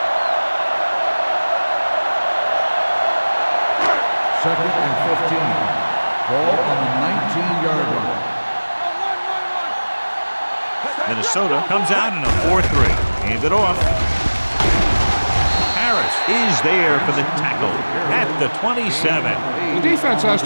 Second and 15. Ball on the 19-yard line. Minnesota comes out in a 4-3. Hand it off. Harris is there for the tackle at the 27. The defense has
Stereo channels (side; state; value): both; inverted; correlation -1.00